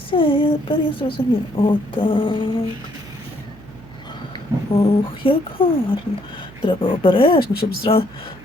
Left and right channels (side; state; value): right; noise; hum, 21 dB below the sound